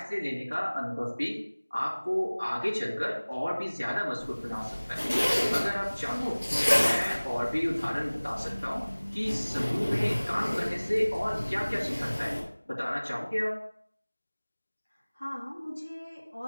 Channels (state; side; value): inverted; both; correlation -1.00